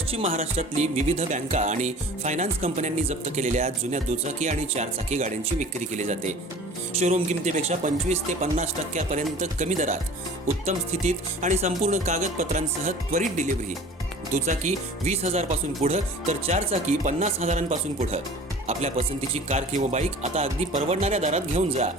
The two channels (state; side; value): normal; both; correlation 0.43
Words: महाराष्ट्रातली विविध बँका आणि फायनान्स कंपन्यांनी जप्त केलेल्या जुन्या दुचाकी आणि चारचाकी गाड्यांची विक्री केली जाते. शोरूम किमतीपेक्षा 25 ते 50% कमी दरात, उत्तम स्थितीत आणि संपूर्ण कागदपत्रांसह त्वरित डिलिव्हरी. दुचाकी 20,000 पासून पुढं तर चारचाकी 50,000 पुढं. आपल्या पसंतीची कार किंवा बाईक आता अगदी परवडणाऱ्या दरात घेऊन जा.